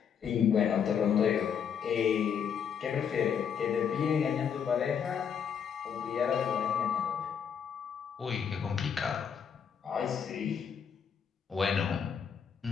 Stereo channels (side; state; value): right; quieter; 7.5 dB